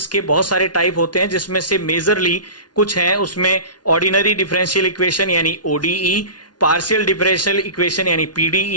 के बहुत सारे टाइप होते हैं, जिसमें से मेजरली कुछ हैं उसमें ऑर्डिनरी डिफरेंशियल इक्वेशन यानी ODE, पार्शियल डिफरेंशियल इक्वेशन यानी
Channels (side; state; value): right; late; 0.69 ms